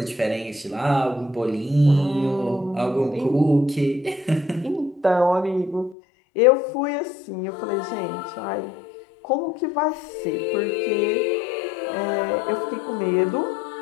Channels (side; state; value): right; drops out; at 6.0 s